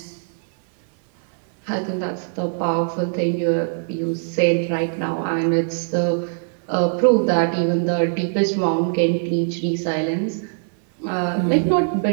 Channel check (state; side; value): silent; left; 58 dB below the other